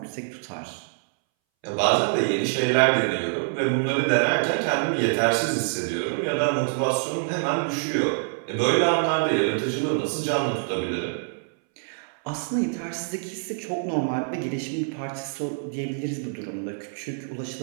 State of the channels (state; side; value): silent; left; 61 dB below the other